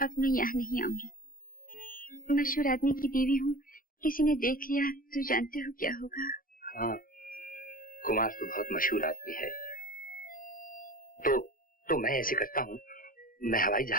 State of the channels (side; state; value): right; late; 0.41 ms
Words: मैं यहाँ नहीं आऊंगी। मशहूर आदमी की बीवी हूँ, किसी ने देख लिया तो जानते हो क्या होगा। हाँ, कुमार तो बहुत मशहूर आदमी है। तो मैं ऐसे करता हूँ, मैं हवाई